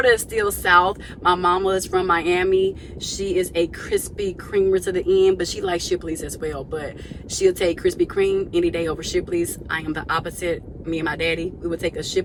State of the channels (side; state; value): both; identical; correlation 1.00